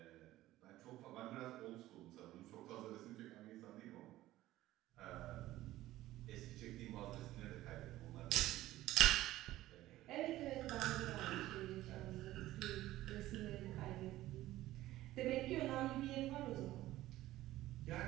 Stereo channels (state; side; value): quieter; left; 15.6 dB